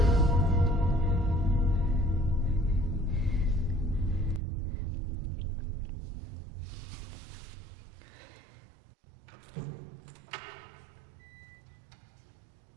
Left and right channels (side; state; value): left; drops out; at 4.4 s